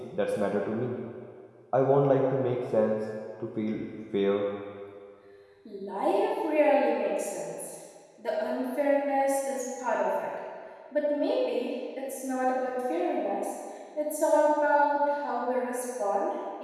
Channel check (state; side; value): identical; both; correlation 1.00